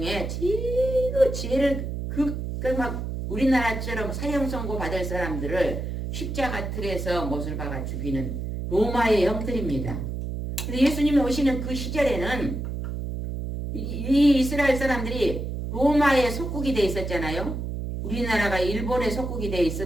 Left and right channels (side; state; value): right; noise; hum, 4 dB below the sound